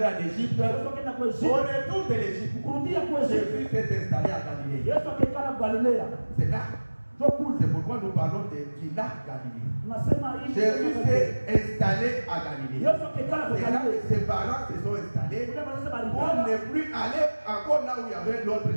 en Égypte. Yesu akaenda kwa Au Yesu. retour de l'Égypte, Kurudia kwa Yesu. Jésus s'est installé à Galilée. Yesu akakaa Galilea. C'est là. Ndio kule. C'est pourquoi nous parlons du lac Galilée. Tunasema hii. Jésus s'est installé à Galilée. Yesu akakaa kwa C'est là que Galilea. ses parents se sont installés. Kule wanasema On alikuwa n'est plus allé encore là où il y avait l'autre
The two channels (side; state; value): both; inverted; correlation -1.00